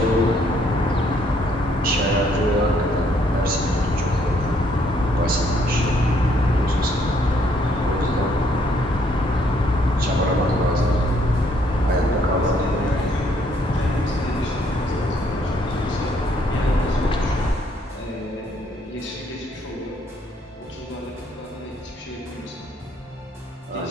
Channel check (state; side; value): normal; both; correlation 0.68